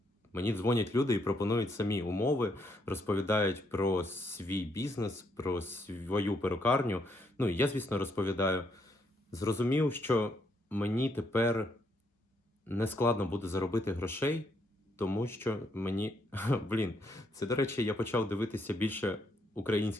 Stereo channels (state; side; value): normal; both; correlation 0.74